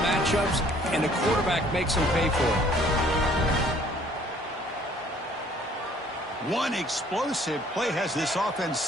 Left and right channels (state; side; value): normal; both; correlation 0.58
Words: matchups, and the quarterback makes them pay for it. One explosive play has this offense